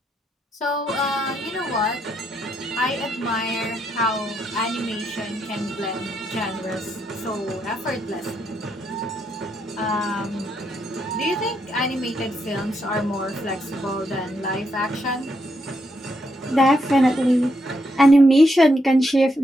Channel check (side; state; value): both; normal; correlation 0.78